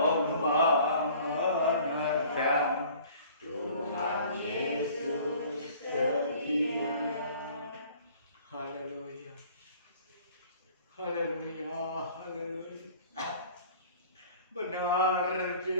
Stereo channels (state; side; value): inverted; both; correlation -0.50